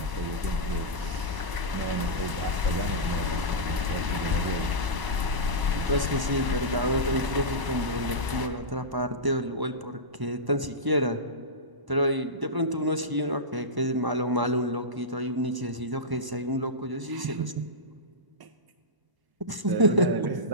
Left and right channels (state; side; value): late; left; 1.0 ms